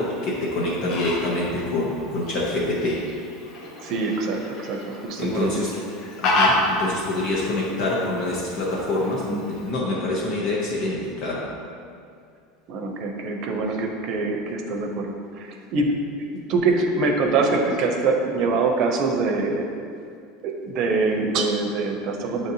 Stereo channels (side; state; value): both; normal; correlation 0.30